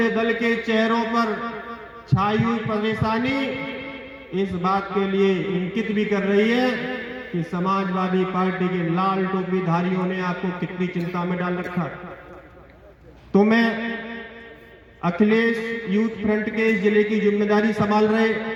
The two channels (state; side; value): identical; both; correlation 1.00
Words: दल के चेहरों पर छाई हुई परेशानी इस बात के लिए इंगित भी कर रही है कि समाजवादी पार्टी के लाल टोपी धारियों ने आपको कितनी चिंता में डाल रखा। तो मैं अखिलेश यूथ फ्रंट के इस जिले की जिम्मेदारी संभाल रहे